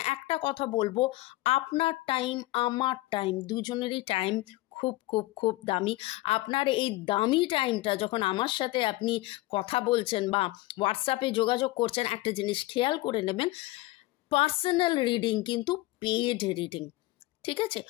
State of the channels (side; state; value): right; quieter; 19.2 dB